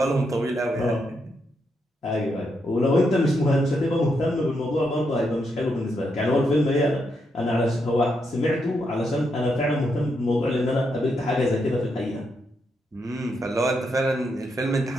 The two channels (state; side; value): normal; both; correlation 0.81